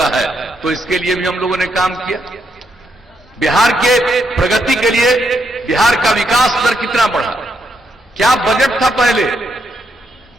है। तो इसके लिए भी हम लोगों ने काम किया। बिहार के प्रगति के लिए बिहार का विकास दर कितना बढ़ा, क्या बजट था पहले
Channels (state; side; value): normal; both; correlation 0.79